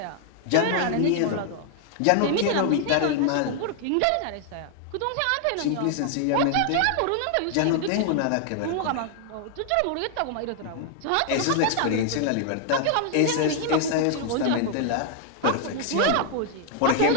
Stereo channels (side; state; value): both; different; correlation 0.00